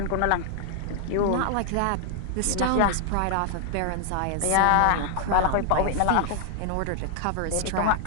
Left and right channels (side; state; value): both; different; correlation 0.00